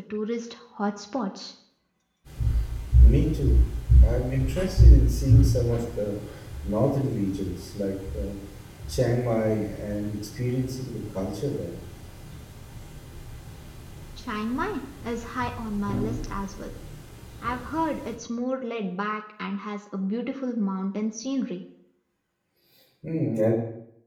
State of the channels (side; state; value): both; identical; correlation 1.00